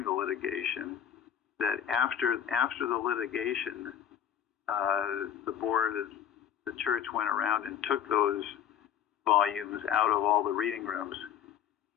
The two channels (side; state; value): right; quieter; 9.3 dB